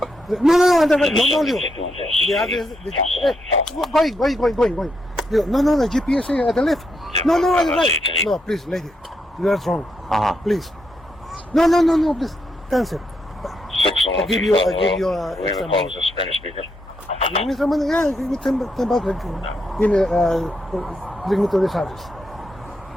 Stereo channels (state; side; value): normal; both; correlation 0.80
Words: no, the address, going. No, the GPS is at the left. No, at the right. No, please, lady, you are wrong. Please. No, please, cancel. I give you extra money. Spanish speaker. Give me some money. Yeah, give me 10 bucks. Give me, bring me to this address.